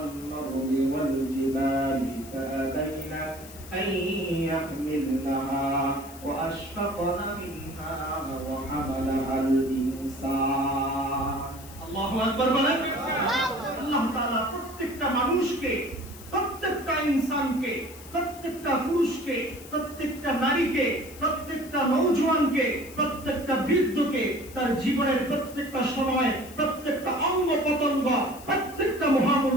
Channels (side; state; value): left; noise; hiss, 18 dB below the sound